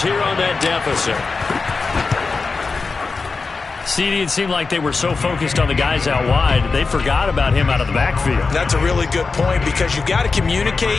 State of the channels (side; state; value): right; quieter; 4.4 dB